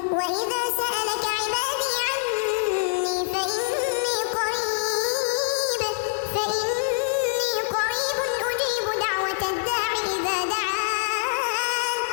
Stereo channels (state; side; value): silent; right; 62 dB below the other